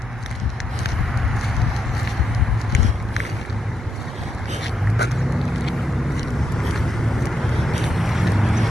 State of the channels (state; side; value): normal; both; correlation 0.82